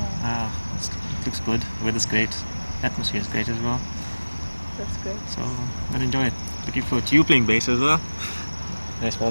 looks good. Weather's great. Atmosphere is great as well. That's great. So I'll enjoy it. Looking forward to you playing bass as well. Nice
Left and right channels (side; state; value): both; inverted; correlation -1.00